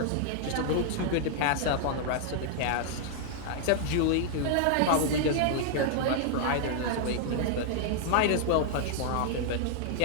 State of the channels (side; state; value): both; different; correlation -0.01